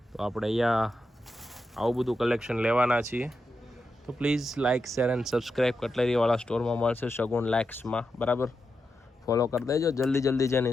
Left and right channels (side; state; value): both; normal; correlation 0.87